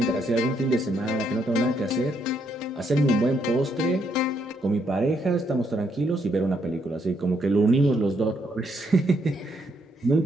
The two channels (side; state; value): both; normal; correlation 0.74